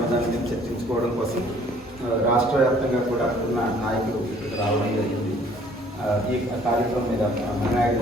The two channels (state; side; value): normal; both; correlation 0.57